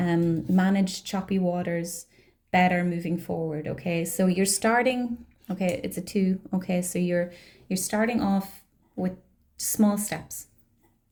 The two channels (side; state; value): both; identical; correlation 1.00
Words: choppy waters better moving forward, okay? So you're starting, okay, it's a 2, okay? So you're starting off with small steps.